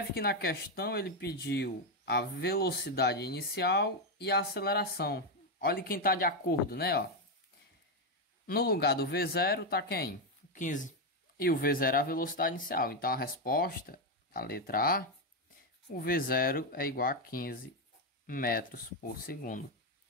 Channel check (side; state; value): both; normal; correlation 0.05